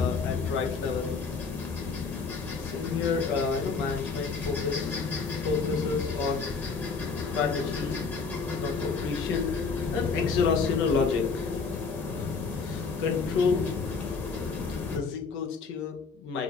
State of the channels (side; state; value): right; quieter; 4.8 dB